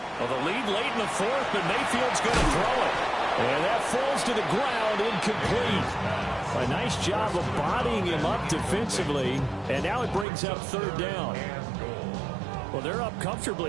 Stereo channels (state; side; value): drops out; left; at 10.2 s